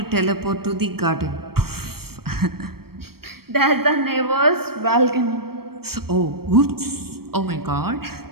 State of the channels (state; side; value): late; left; 0.94 ms